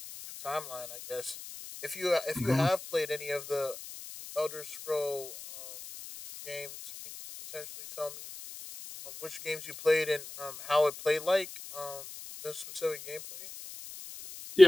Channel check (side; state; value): left; noise; hiss, 13 dB below the sound